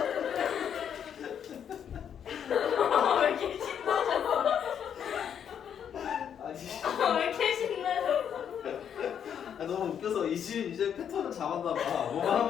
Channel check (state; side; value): quieter; right; 8.5 dB